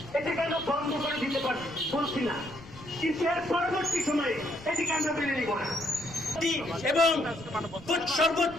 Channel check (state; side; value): noise; left; rumble, 20 dB below the sound